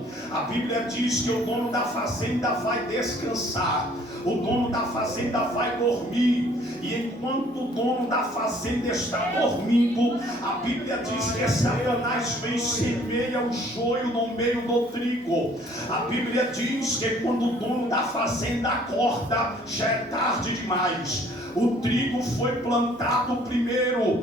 A Bíblia diz que o dono da fazenda vai descansar, o dono da fazenda vai dormir. E enquanto o dono da fazenda está dormindo, a Bíblia diz que Satanás vem e semeia o joio no meio do trigo. A Bíblia diz que quando o dono da fazenda acorda, já é tarde demais. O trigo foi plantado primeiro,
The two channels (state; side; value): noise; right; hum, 30 dB below the sound